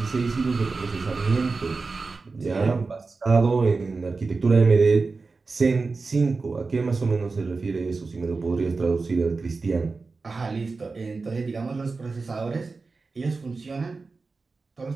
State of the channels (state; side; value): quieter; left; 4.1 dB